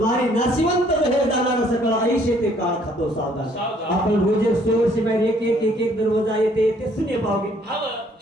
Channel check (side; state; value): both; normal; correlation 0.62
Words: नाशिवंत रहे जाणार सकळ आयुष्य ते काळ खातो सावधान सावधान. आपण रोजे स्टोर शिवाय एक दरवाजा येते सुने पावगे हाव